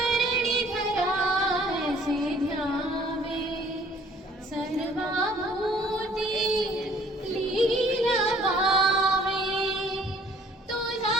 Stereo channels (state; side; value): normal; both; correlation 0.57